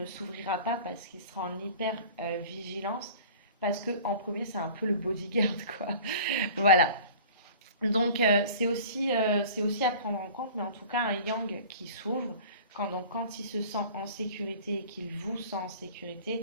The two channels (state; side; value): inverted; both; correlation -0.44